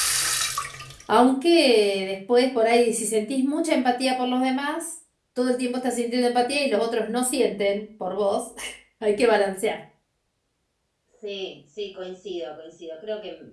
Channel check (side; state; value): both; identical; correlation 1.00